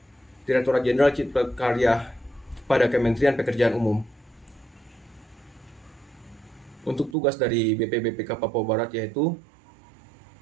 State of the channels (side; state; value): left; drops out; at 7.2 s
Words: Direktorat Jenderal Cipta Karya pada Kementerian Pekerjaan Umum. Untuk tugas dari BPBPK Papua Barat yaitu